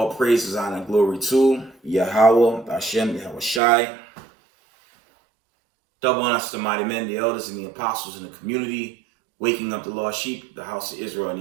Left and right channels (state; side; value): drops out; left; at 3.6 s